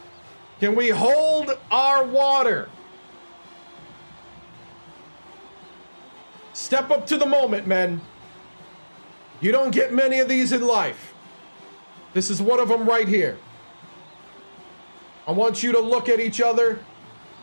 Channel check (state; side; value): inverted; both; correlation -1.00